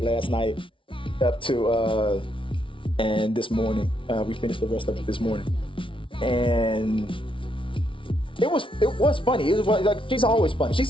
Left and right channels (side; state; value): right; late; 0.25 ms